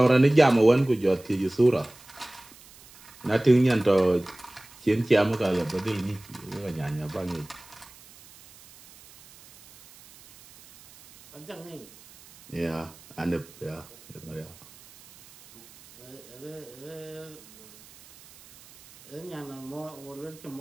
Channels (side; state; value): right; noise; hiss, 23 dB below the sound